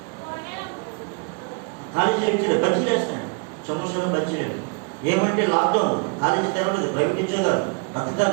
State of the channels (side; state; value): left; quieter; 34.2 dB